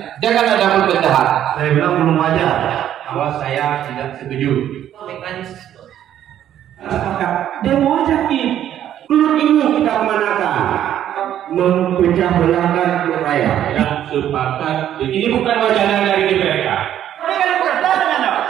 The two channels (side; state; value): left; quieter; 11.0 dB